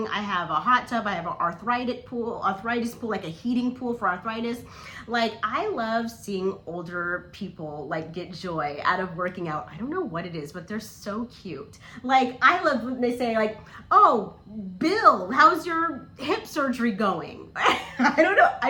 I have a hot tub, I have an arthritis pool, like a heating pool for arthritis. Like, I love seeing older people like get joy out of working out. I don't know what it is, but they're so cute. Like, I love when they say like, "Oh, Bill, how's your hip surgery going?" I don't know,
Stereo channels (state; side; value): identical; both; correlation 1.00